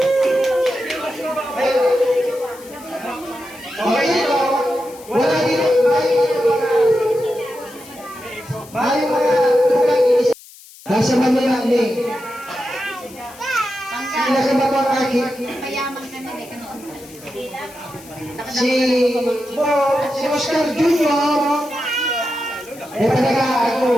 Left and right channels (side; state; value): left; noise; hiss, 21 dB below the sound